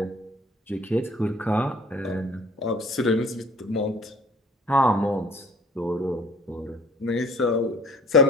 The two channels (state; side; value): normal; both; correlation 0.53